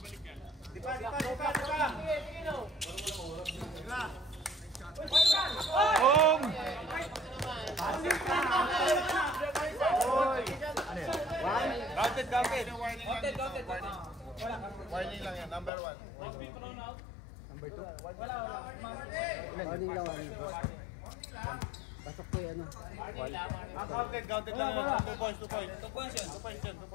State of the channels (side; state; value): right; drops out; at 15.7 s